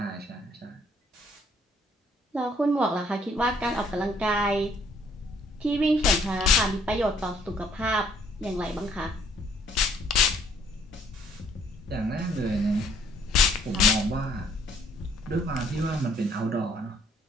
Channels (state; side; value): normal; both; correlation 0.63